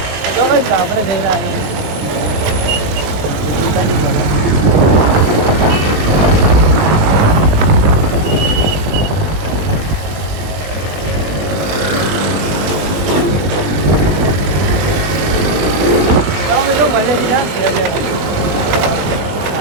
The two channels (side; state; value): left; late; 20 ms